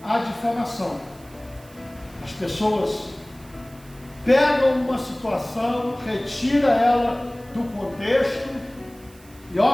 a difamação. As pessoas pegam uma situação, retira ela do contexto e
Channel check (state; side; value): noise; right; hiss, 25 dB below the sound